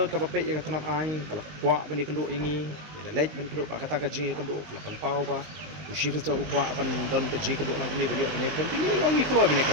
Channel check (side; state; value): left; late; 20 ms